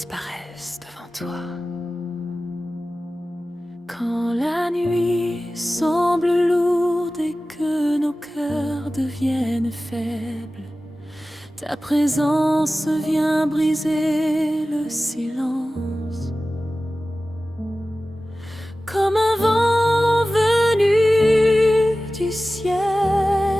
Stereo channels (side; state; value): both; normal; correlation 0.96